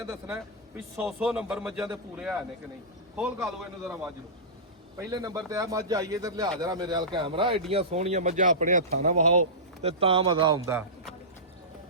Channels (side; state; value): both; normal; correlation -0.19